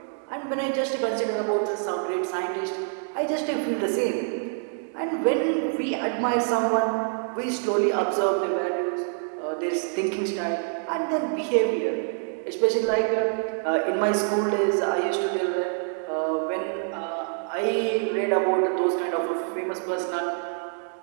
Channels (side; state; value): left; silent; 58 dB below the other